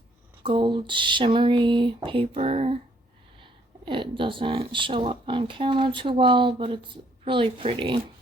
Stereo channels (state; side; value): normal; both; correlation 0.66